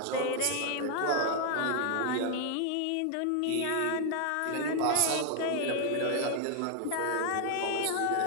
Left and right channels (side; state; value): both; different; correlation 0.00